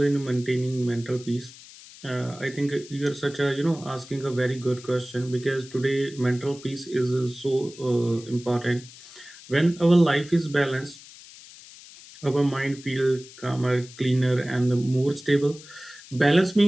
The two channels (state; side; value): noise; left; hiss, 19 dB below the sound